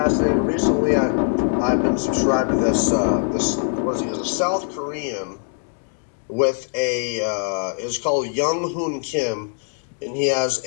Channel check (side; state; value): right; silent; 59 dB below the other